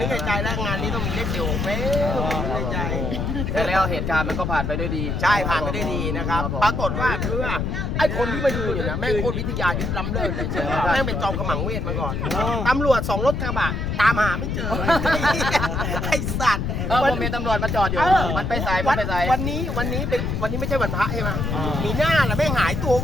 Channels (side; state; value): left; noise; rumble, 1 dB below the sound